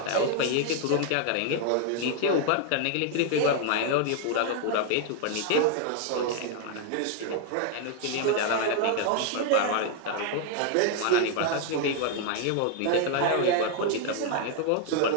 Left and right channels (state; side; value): different; both; correlation 0.00